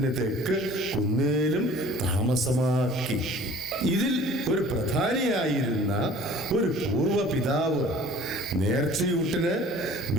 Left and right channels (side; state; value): both; normal; correlation 0.48